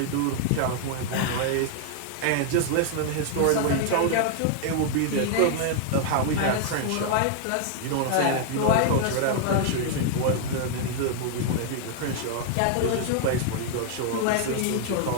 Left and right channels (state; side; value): different; both; correlation 0.00